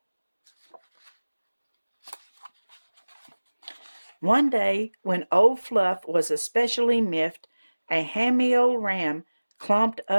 One day, when old Fluff was especially miffed, a hammy old ram clomped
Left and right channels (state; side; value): inverted; both; correlation -1.00